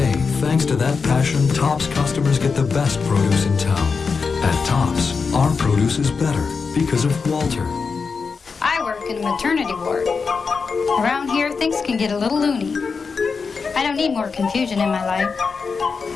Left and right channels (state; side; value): quieter; right; 5.1 dB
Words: thanks to that passion, Tops customers get the best produce in town. At Tops, our produce is better because of Walter. I work in a maternity ward. Around here, things can get a little loony. I don't need more confusion in my life.